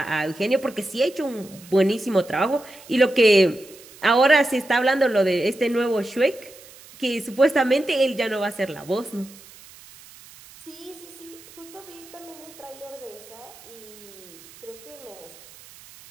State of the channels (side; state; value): right; noise; hiss, 21 dB below the sound